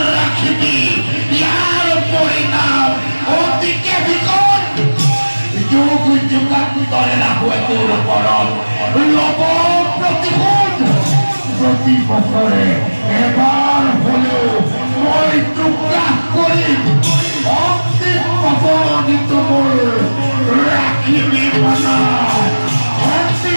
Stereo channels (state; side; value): inverted; both; correlation -1.00